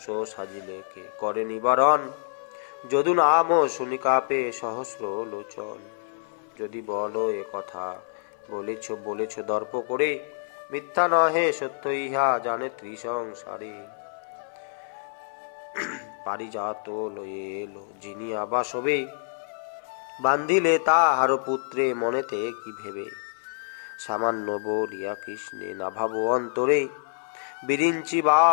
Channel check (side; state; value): right; silent; 60 dB below the other